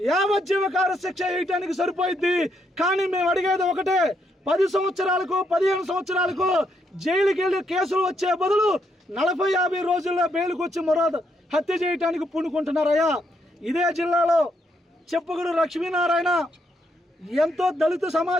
యావజ్జీవకార శిక్ష వేయటానికి సరిపోయింది. కానీ మేము అడిగేది ఒకటే, 10 సంవత్సరాలకు 15 సంవత్సరాలకు జైలుకి వెళ్ళి కేసులు వచ్చే బదులు 40-50 రోజుల్లో బెయిల్కి వచ్చి మరో హత్య చేయటానికి పూనుకుంటున్నారయ్యా. ఇదే జిల్లాలో చెప్పుగుడు లక్ష్మీనారాయణ ఎంతో దళిత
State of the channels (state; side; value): normal; both; correlation 0.76